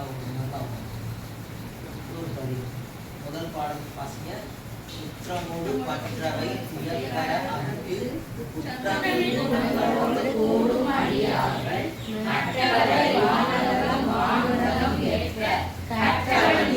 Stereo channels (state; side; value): identical; both; correlation 1.00